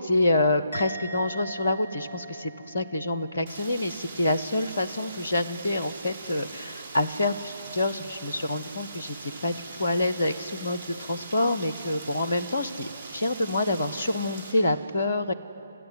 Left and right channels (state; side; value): inverted; both; correlation -0.77